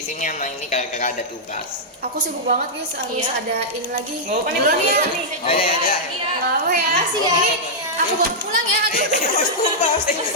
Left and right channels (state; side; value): normal; both; correlation -0.08